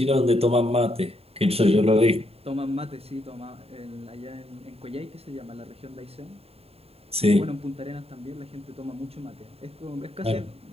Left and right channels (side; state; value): left; late; 0.29 ms